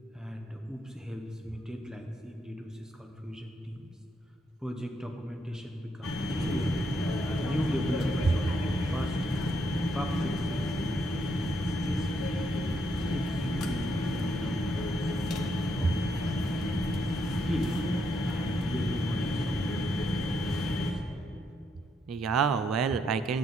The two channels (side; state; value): both; normal; correlation 0.77